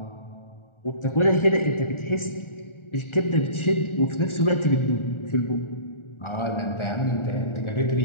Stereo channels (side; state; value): right; late; 1.4 ms